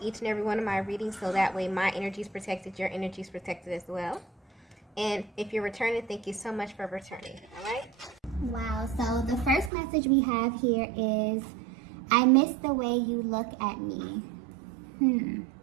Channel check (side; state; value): left; drops out; at 9.7 s